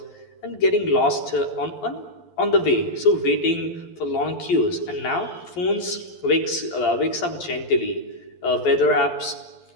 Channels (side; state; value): right; late; 11 ms